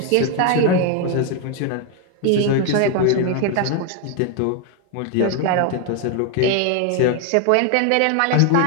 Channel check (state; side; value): different; both; correlation 0.01